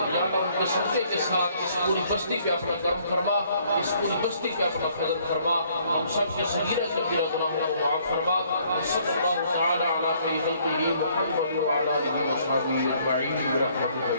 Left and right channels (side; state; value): both; inverted; correlation -0.64